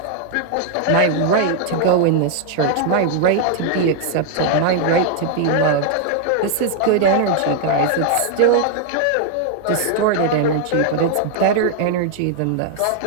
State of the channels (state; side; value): different; both; correlation 0.00